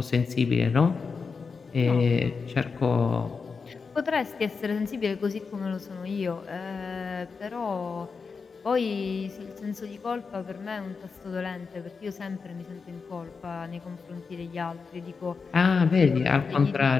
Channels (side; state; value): right; quieter; 5.1 dB